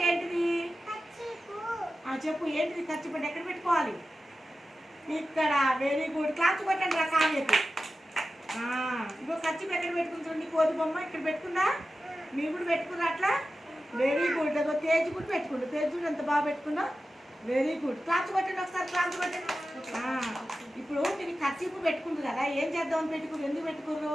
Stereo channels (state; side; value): normal; both; correlation 0.93